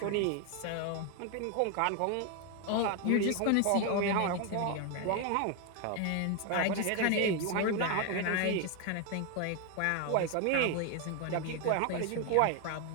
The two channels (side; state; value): both; different; correlation 0.01